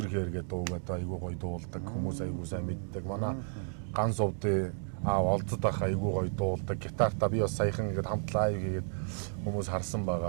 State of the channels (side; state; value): left; silent; 56 dB below the other